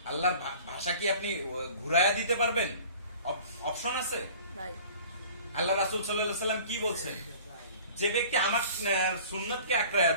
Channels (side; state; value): both; inverted; correlation -0.46